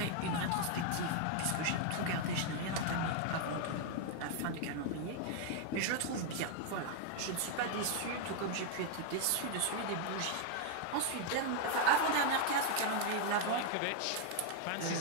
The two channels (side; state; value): both; different; correlation 0.00